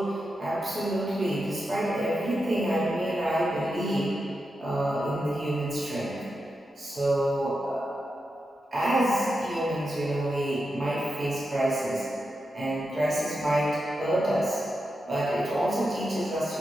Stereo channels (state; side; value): normal; both; correlation 0.88